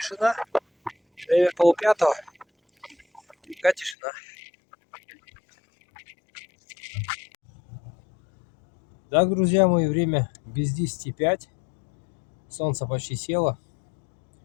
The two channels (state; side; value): drops out; right; at 4.0 s